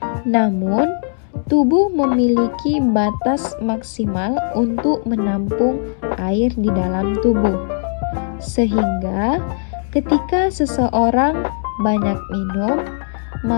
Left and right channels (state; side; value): silent; right; digital silence